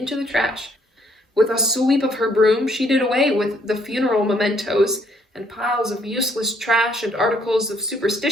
the trash. With a sweep of her broom, she did away with the funeral mementos and piles of useless trash and articles of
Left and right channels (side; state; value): both; normal; correlation 0.67